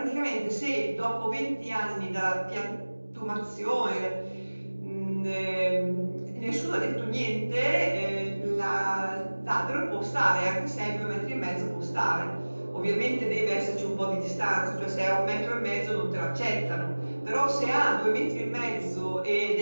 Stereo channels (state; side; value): inverted; both; correlation -1.00